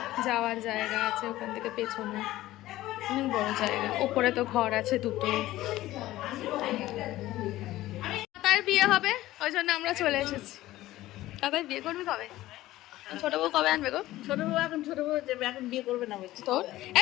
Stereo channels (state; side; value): quieter; right; 16.0 dB